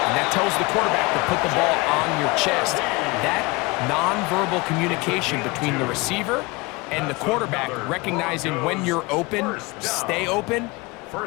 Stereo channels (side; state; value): right; quieter; 24.5 dB